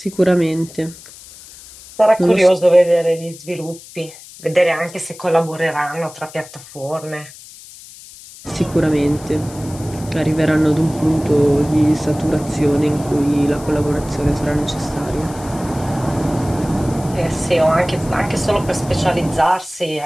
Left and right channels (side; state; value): left; noise; hiss, 18 dB below the sound